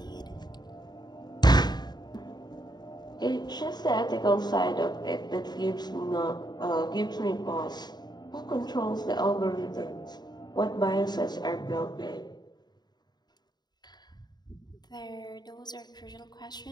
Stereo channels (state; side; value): late; right; 0.20 ms